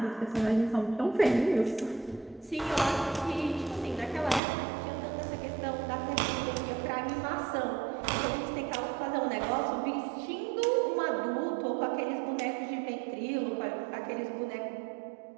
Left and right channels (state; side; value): drops out; left; at 4.4 s